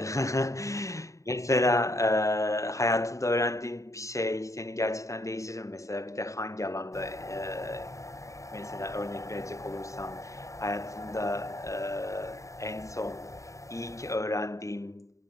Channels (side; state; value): right; late; 0.15 ms